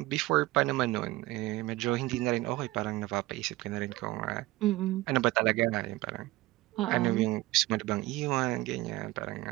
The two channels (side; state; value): left; quieter; 18.8 dB